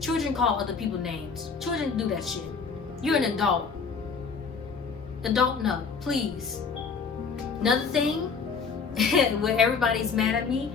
other people names. Children do that shit. You're an adult. Adult, no, please. Another thing, where everybody's mad at me,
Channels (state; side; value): quieter; right; 5.3 dB